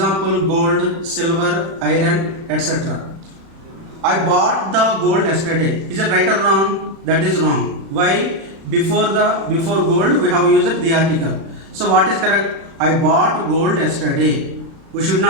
gold, silver, iron, etc. I bought the gold yesterday. Is it right or wrong? That is wrong. Why? Before gold we have used the article. So what is correct? I bought gold yesterday. We should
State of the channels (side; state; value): left; late; 36 ms